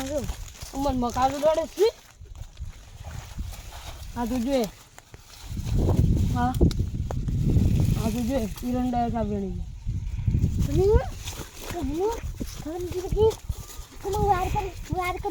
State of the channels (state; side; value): identical; both; correlation 1.00